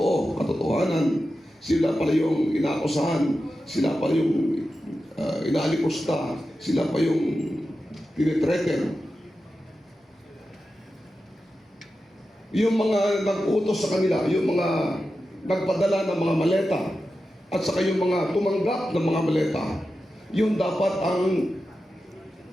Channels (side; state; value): both; normal; correlation 0.91